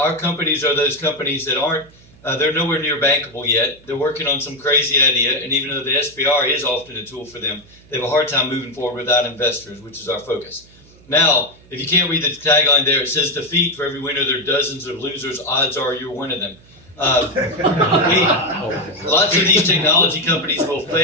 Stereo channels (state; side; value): noise; right; hum, 26 dB below the sound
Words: companies are those companies that aren't, they're nowhere near bankable yet. They're working on some crazy idea, and even though the SBIR is often a tool for them, they have a hard time moving forward without investors, which is our focus. Now, if you can't read the tagline there, it says defeat for every winner, there are dozens of losers, odds are you're one of them. Lots of these technology companies will